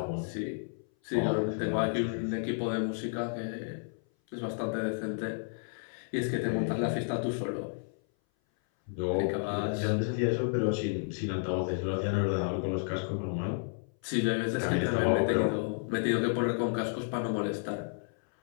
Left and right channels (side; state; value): right; silent; 57 dB below the other